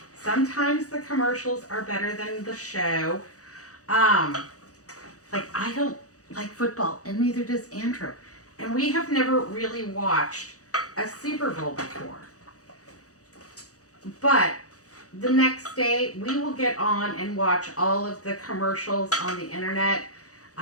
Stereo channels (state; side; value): late; right; 0.66 ms